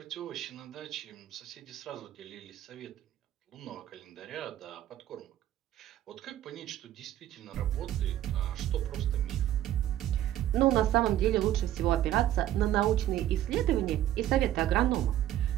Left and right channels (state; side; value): quieter; left; 12.6 dB